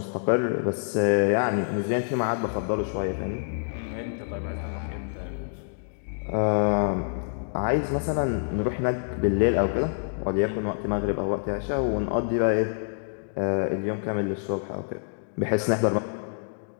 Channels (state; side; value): silent; right; digital silence